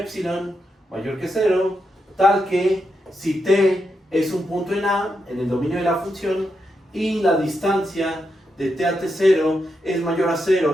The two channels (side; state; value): both; normal; correlation 0.84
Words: mayor que 0, tal que si t es un punto en A, en el dominio de la función, y la distancia de t a t0 es mayor a